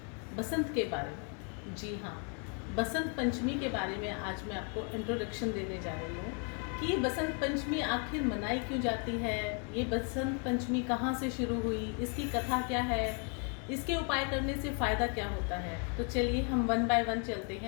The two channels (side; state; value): right; quieter; 39.4 dB